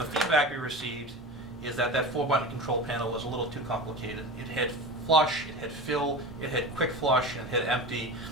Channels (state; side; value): normal; both; correlation 0.30